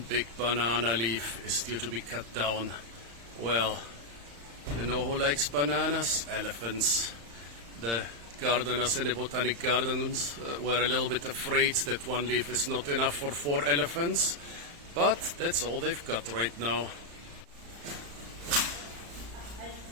big banana leaf is due to be cut down. Well, you know who likes bananas? Elephants. The gardeners in the botanic gardens were a little bit afraid that one leaf is not enough for 4 elephants, but that's all they've got right now.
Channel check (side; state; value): left; late; 35 ms